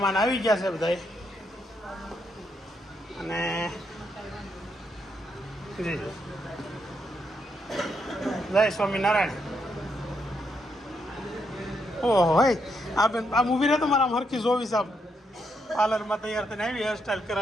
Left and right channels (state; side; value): normal; both; correlation 0.78